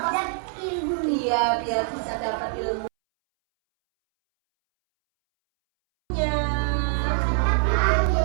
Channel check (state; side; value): silent; left; 62 dB below the other